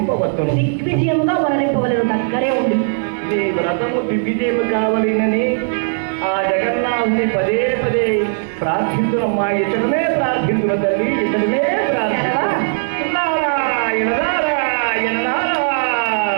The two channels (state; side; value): silent; left; 55 dB below the other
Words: దిగ్విజయముగా వనరింపవలను దగ్గరే ఉంది. నీ వ్రతము దిగ్విజయము కావాలని